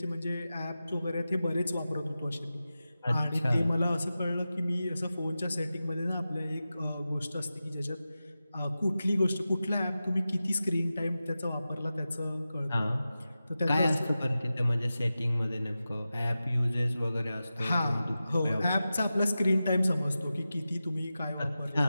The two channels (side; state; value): both; inverted; correlation -0.93